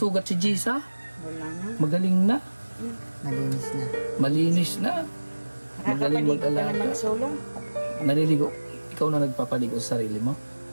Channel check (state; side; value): inverted; both; correlation -1.00